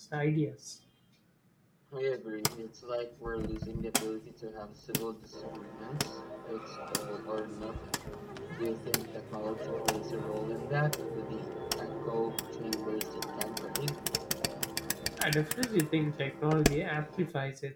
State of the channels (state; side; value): identical; both; correlation 1.00